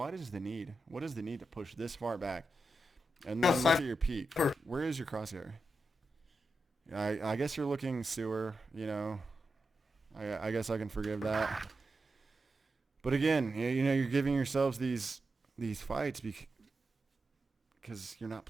is the need? What is the need to push this far back and then look at your peak? Where is your crosshair? I guess you're looking sewer, you know. I guess I can forgive that. But again, you know, you're giving yourselves these fights because you're not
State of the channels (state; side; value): normal; both; correlation 0.88